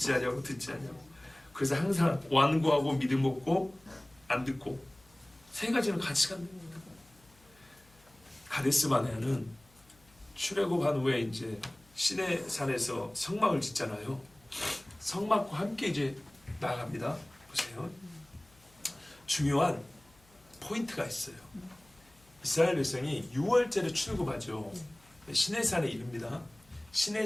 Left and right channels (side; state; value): left; noise; hum, 29 dB below the sound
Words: 않냐고 듣지 않냐고. 그래서 항상 완고하고 믿음 없고 안 듣고 세 가지는 같이 간다. 가데스 바네아는 출애굽한 후에 이제 시내 산에서 성막을 짓잖아요. 성막과 함께 이제 나갑니다. 보세요. 중요한 포인트가 있어요. 이스라엘 백성이 6월절에 출애굽하죠. 시내산에 이릅니다.